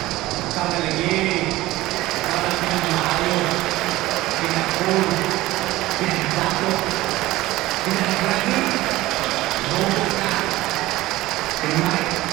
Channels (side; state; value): left; quieter; 17.5 dB